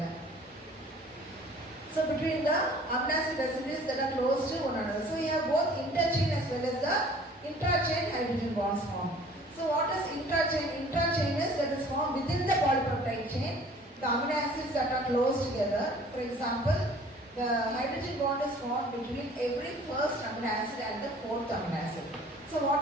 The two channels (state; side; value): normal; both; correlation 0.51